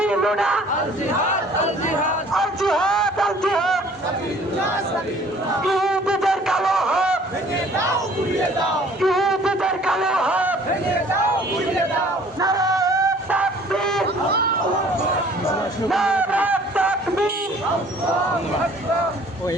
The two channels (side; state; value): both; normal; correlation 0.54